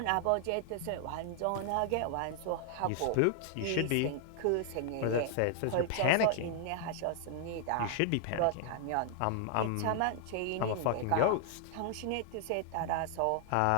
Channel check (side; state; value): both; different; correlation 0.00